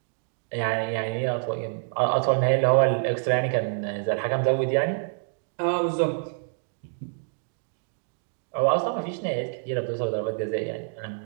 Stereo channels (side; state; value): left; silent; digital silence